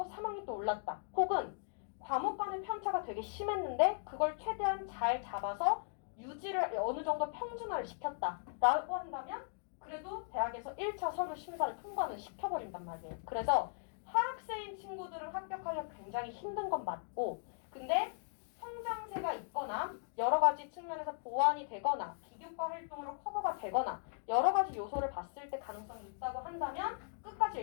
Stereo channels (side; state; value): right; silent; digital silence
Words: 3학년 때 올랐다. 혹은 과목 간의 편차가 되게 심했는데 그걸 최대한 잘 잡아서 유지를 어느 정도 평준화를 시켰다라고 한다면 그래도 대학에서 1차 서류 심사를 통과는 시켜버린단 말이에요. 그래서 하락세인 친구들은 합격하기가 굉장히 힘든 건 맞고 근데 성장세가 있거나 여러 가지 측면에서 보완이 되거나 비교과 활동으로 커버가 되거나 여러 가지 요소를 봤을 때 가능성이 있다고 한다면 끝까지